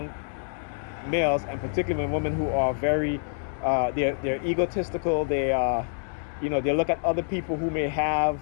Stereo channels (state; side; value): silent; right; digital silence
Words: males, and particularly when women who are very they're egotistical, they they look at other people who may have